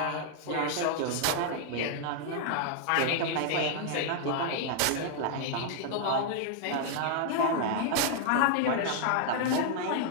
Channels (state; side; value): different; both; correlation -0.01